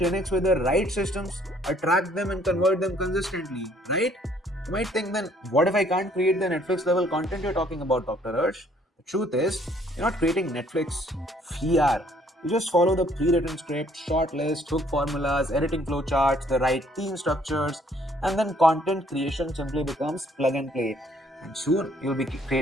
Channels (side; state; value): both; normal; correlation 0.63